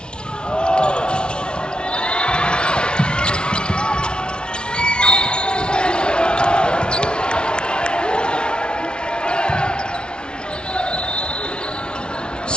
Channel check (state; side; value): late; right; 0.055 ms